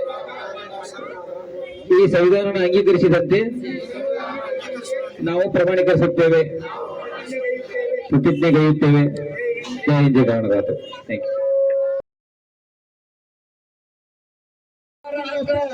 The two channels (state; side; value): identical; both; correlation 1.00